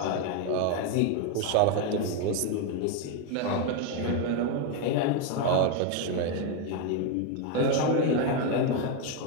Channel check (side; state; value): both; different; correlation 0.02